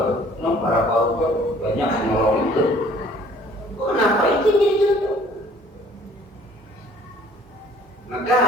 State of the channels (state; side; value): normal; both; correlation 0.56